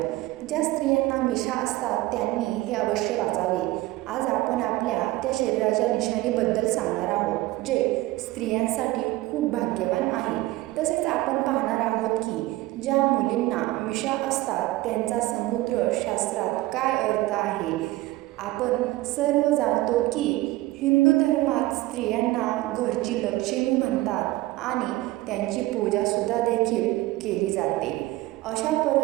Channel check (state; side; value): quieter; left; 18.1 dB